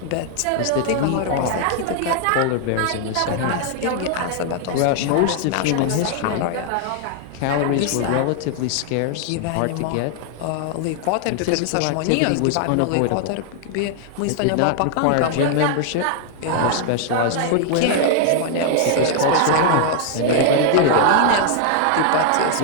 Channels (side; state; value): both; different; correlation 0.00